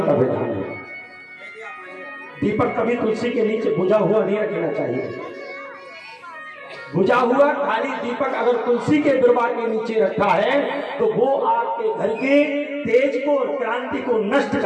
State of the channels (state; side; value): identical; both; correlation 1.00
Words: विधान है। दीपक कभी तुलसी के नीचे बुझा हुआ नहीं रखना चाहिए। बुझा हुआ खाली दीपक अगर तुलसी के बिरवा के नीचे रखा है तो वो आपके घर के तेज को, क्रांति को नष्ट